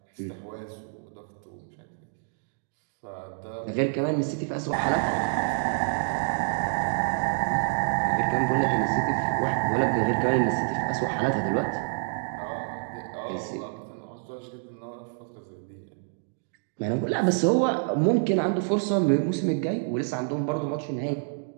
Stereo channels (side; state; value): left; silent; digital silence